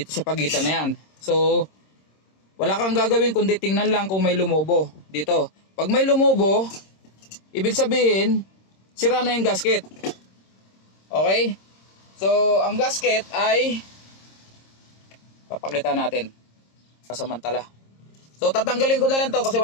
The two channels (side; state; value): right; late; 26 ms